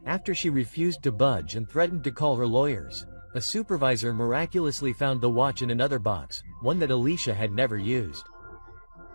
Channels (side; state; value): both; inverted; correlation -1.00